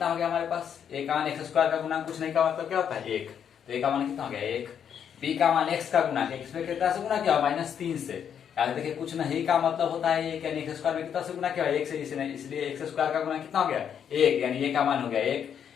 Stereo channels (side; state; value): right; quieter; 8.3 dB